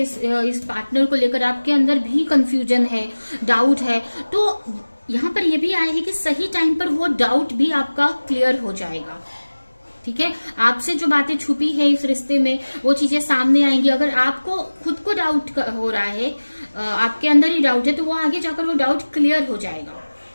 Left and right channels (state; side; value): inverted; both; correlation -1.00